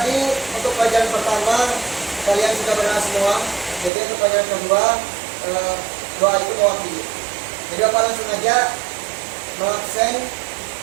untuk pelajaran pertama kalian sudah benar semua. Jadi untuk pelajaran kedua doa itu mewakili. Jadi apa langsung aja mengaksen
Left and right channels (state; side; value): drops out; left; at 3.9 s